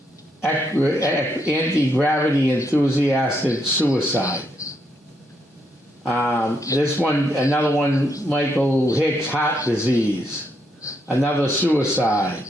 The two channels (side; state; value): both; normal; correlation 0.77